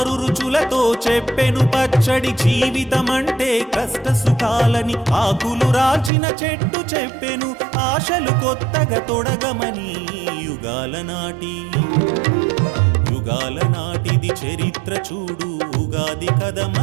రుచులతో చెప్పెను పచ్చడి జీవితమంటే కష్ట సుఖాలని ఆకులు రాల్చిన చెట్టు చెప్పెను ఆశలు కొత్తగా తొడగమని యుగాల నాటిది చరిత్ర చూడు ఉగాది కథ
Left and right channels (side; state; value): left; drops out; at 6.1 s